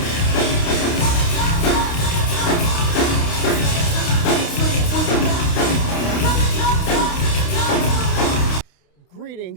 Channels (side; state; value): right; late; 29 ms